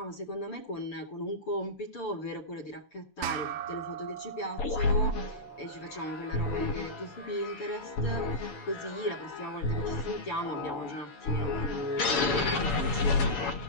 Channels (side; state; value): right; late; 7.1 ms